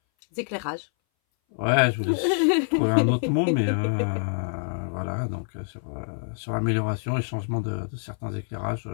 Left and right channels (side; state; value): right; silent; 59 dB below the other